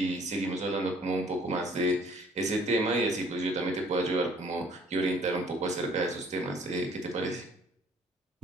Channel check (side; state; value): both; normal; correlation 0.58